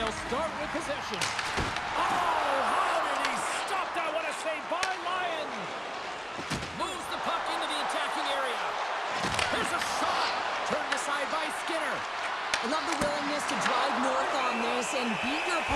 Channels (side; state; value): both; identical; correlation 1.00